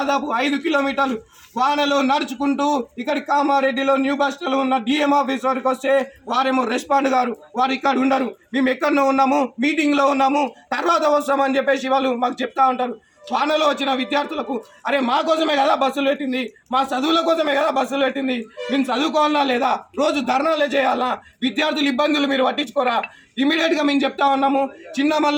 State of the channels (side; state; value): both; identical; correlation 1.00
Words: 5 కిలోమీటర్లు వానలో నడుచుకుంటూ ఇక్కడి కామారెడ్డిలో న్యూ బస్ స్టాండ్లో ఉన్న డిఎం ఆఫీస్ వరకు వస్తే వారేమో రెస్పాండ్ గారు, వారు ఇక్కడ ఉండరు, మేము ఎక్కడో ఉన్నాము, మీటింగ్లో ఉన్నాము, తర్వాత వస్తామని చెప్పేసి వాళ్ళు మాకు చెప్తా ఉంటారు. వానలో వచ్చిన విద్యార్థులకు అరే మా కోసమే కదా బస్సులు పెట్టింది, మా చదువుల కోసమే కదా బస్సులు పెట్టింది, మేము చదువుకోవాలా లేదా, రోజు ధర్నాలే చేయాలా, విద్యార్థుల ఇబ్బందులు మీరు పట్టించుకోరా, ఇమీడియట్గా మేము చెప్తా ఉన్నాము. చిన్న